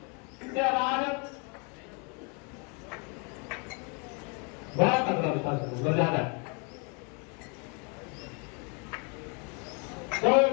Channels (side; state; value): right; quieter; 33.6 dB